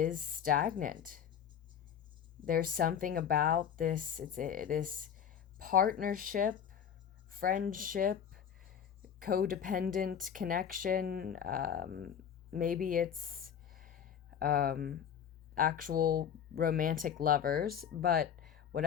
stagnant. There's something about this, this partnership, friendship, codependent connection. Maybe it's actual romantic lovers, but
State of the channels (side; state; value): right; quieter; 8.4 dB